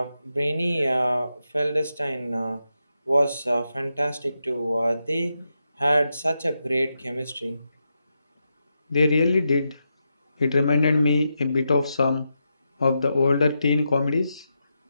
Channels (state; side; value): inverted; both; correlation -0.86